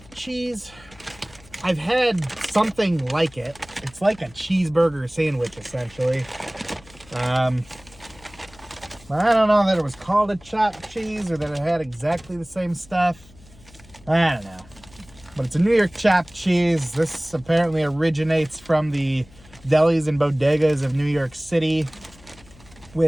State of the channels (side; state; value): left; noise; hum, 24 dB below the sound